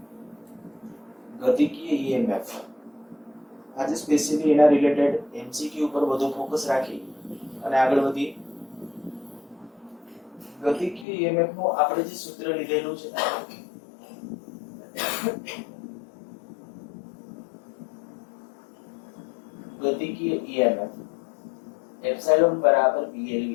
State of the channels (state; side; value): drops out; right; at 11.1 s